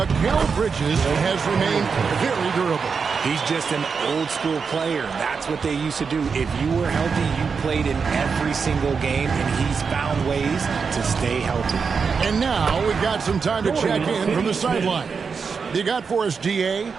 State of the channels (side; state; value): left; quieter; 5.6 dB